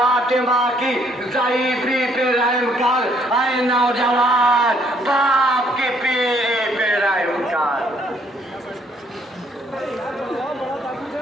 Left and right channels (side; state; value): both; normal; correlation 0.66